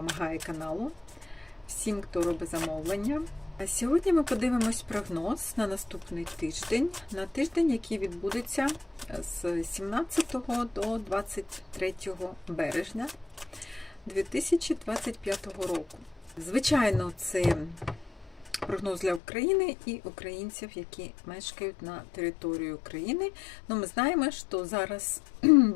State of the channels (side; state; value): right; drops out; at 19.2 s